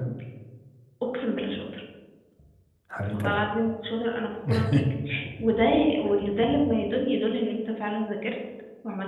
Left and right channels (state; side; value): identical; both; correlation 1.00